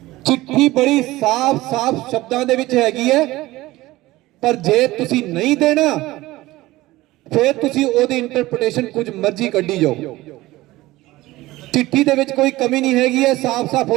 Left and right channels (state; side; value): quieter; left; 18.2 dB